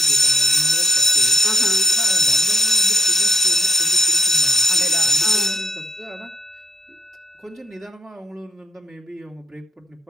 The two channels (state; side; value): normal; both; correlation 0.65